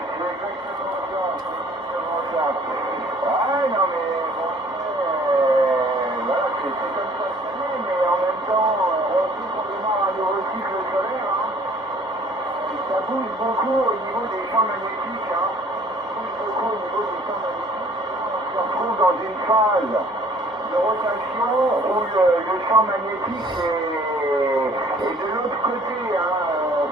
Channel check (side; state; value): both; normal; correlation 0.55